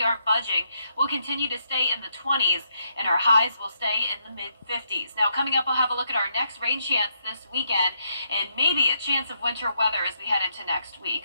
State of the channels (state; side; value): inverted; both; correlation -0.77